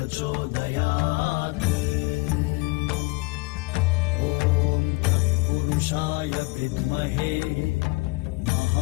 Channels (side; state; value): right; quieter; 25.8 dB